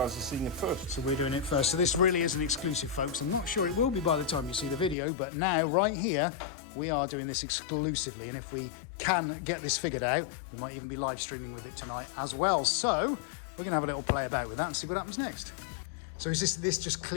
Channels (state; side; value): drops out; right; at 5.0 s